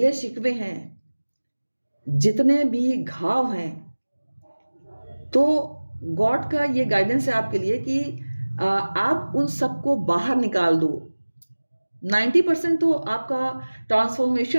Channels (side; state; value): both; inverted; correlation -1.00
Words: शिकवे हैं, जितने भी घाव हैं, तो गॉड का ये गाइडेंस है आपके लिए कि आप उन सबको बाहर निकाल दो। 90% तो आपका